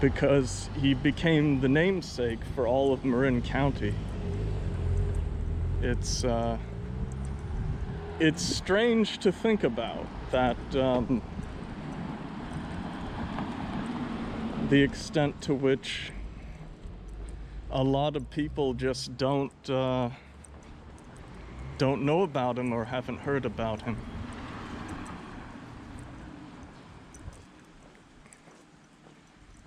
he became the namesake for all of Marin County. It's strange to think about that the extent to which a lot of people just don't know about him or haven't heard about him.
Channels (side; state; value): both; identical; correlation 1.00